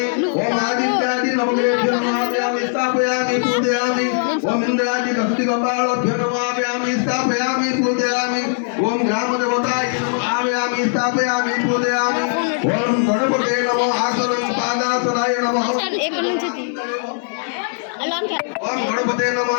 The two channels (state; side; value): silent; right; digital silence